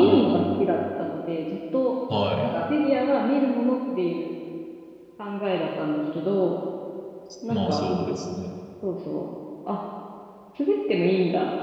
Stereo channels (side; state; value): both; identical; correlation 1.00